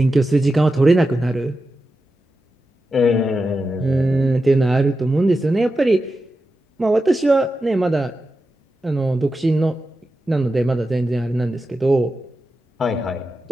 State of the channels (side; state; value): both; normal; correlation 0.90